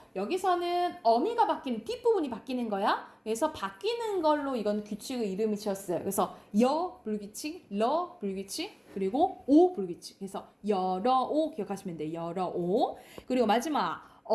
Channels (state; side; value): identical; both; correlation 1.00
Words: 여기서는 어미가 바뀌는 뒷부분이 바뀌는 거야. 그래서 바뀌는 걸로 이건 규칙의 이름이 지었어요. 그래서 여 불규칙, 러 불규칙, 그리고 오 불규칙. 그래서 여러 오 기억하시면 돼요. 여러 오. 그리고 마지막